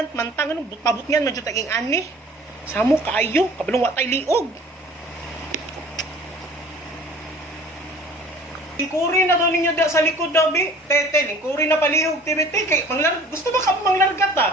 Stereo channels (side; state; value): both; normal; correlation 0.49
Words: man tang anong pabot niyan man jud taging ani. Samo kaayo kabulong wa tay liog. Ikuri na daw ninyo da sa likod daw bi. Tete, lingkuri na palihog TBT kay gusto ba ka manglargat